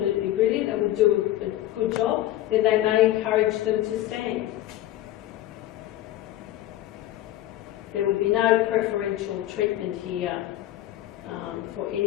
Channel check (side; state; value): right; quieter; 14.2 dB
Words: brilliant and will do a good job, then they may encourage them to stand. There would be no preferential treatment here for